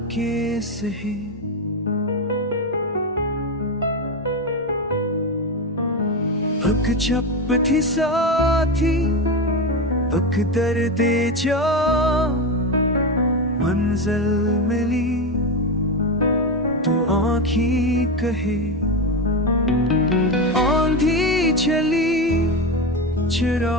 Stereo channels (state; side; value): normal; both; correlation 0.16